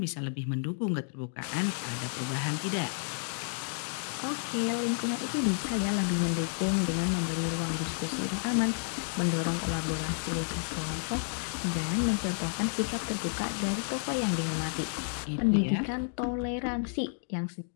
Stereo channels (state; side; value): silent; right; digital silence